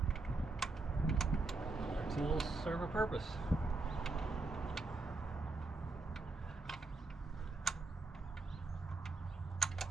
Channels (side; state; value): left; quieter; 3.5 dB